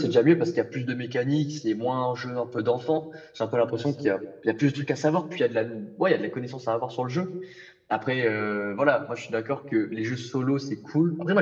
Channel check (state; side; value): identical; both; correlation 1.00